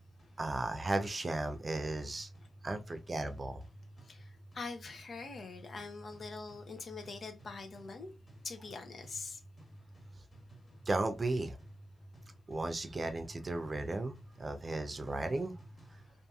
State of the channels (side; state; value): both; normal; correlation 0.93